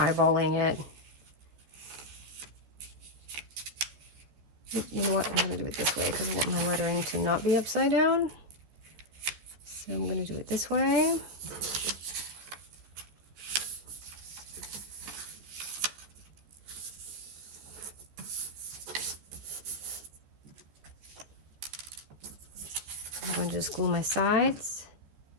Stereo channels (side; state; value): left; late; 14 ms